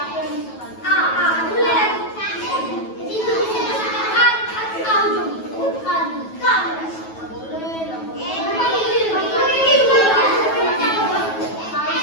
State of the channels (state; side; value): late; right; 9.2 ms